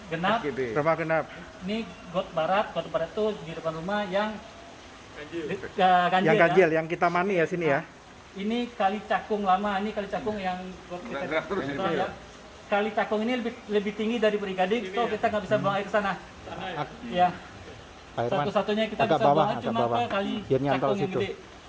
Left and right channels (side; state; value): both; identical; correlation 1.00